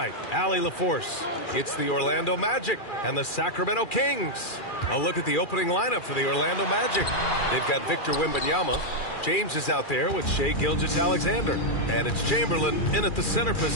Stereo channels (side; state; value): right; late; 2.4 ms